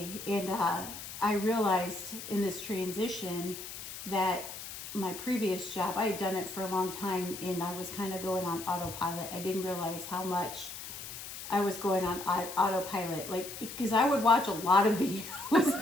and I realized in this transition that my previous job, I had done it for a long time, and I was kind of going on autopilot. I didn't realize how much I was going on autopilot, because I would watch a lot of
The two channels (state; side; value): noise; left; hiss, 10 dB below the sound